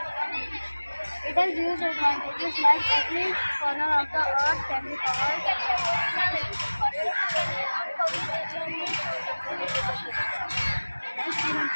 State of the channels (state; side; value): inverted; both; correlation -1.00